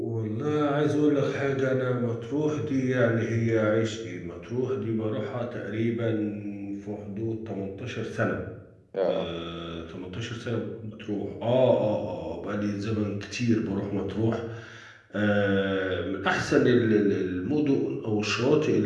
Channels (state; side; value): identical; both; correlation 1.00